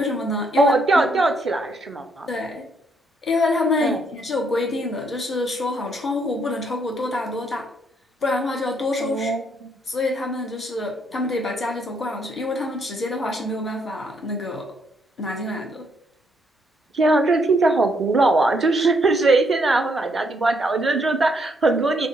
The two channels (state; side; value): normal; both; correlation 0.72